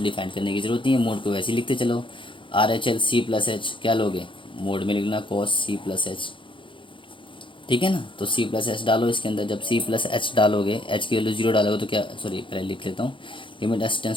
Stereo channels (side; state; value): right; late; 0.25 ms